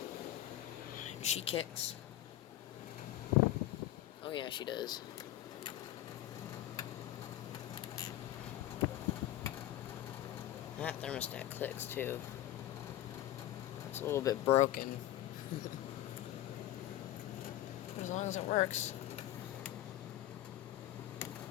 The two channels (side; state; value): right; quieter; 13.9 dB